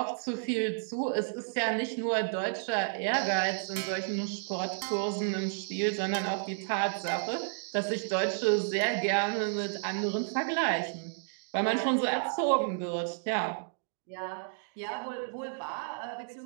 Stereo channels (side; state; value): left; silent; digital silence